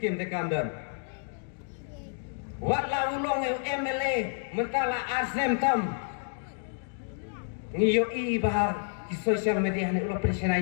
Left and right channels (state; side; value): silent; right; 58 dB below the other